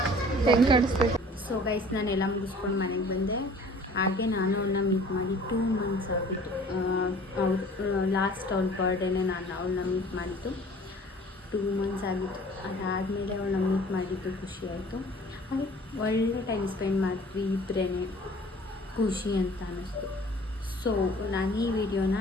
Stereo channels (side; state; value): both; normal; correlation 0.48